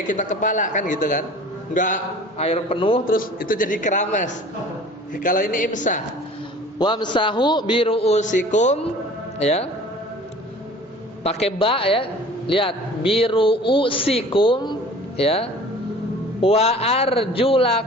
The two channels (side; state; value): both; normal; correlation 0.46